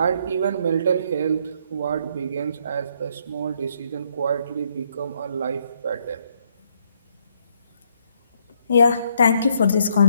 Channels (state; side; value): inverted; both; correlation -0.70